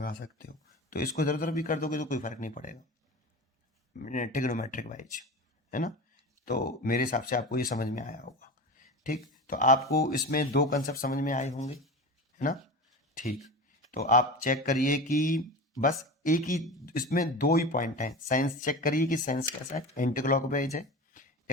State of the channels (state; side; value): normal; both; correlation 0.29